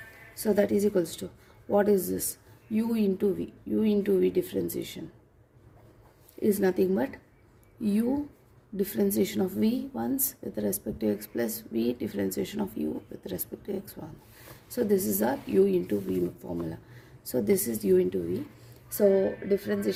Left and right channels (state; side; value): identical; both; correlation 1.00